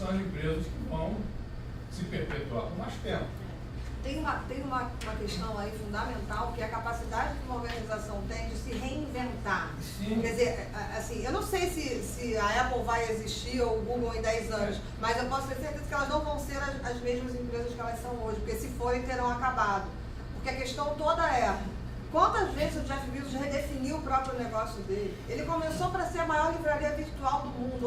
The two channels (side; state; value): both; identical; correlation 1.00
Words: as empresas que vão se perpetuar por mais tempo. Tem uma questão aí fundamental, que é a capacidade que uma organização tem de se reinventar. Sim. Quer dizer, assim, eu não sei se a Apple vai existir ou o Google em 10 anos, mas eu posso ter certeza que elas não vão ser as mesmas empresas que elas são hoje, porque se forem, terão acabado. Porque a questão toda é, quantas vezes o Jeff Bezos redefiniu o próprio negócio dele? Ele começou para ser a maior livraria virtual do mundo.